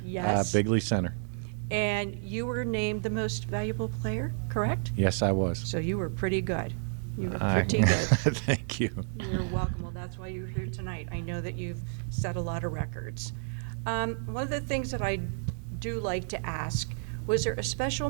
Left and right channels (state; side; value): silent; left; digital silence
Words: Yes. Bigley Center. And you were named the most valuable player, correct? Yes, I was. So you were pretty good. You were pretty good. Thank you. You're welcome. Well, that's why you're here tonight. I know that you've set a lot of records. One of the things that I do like to ask, was there a special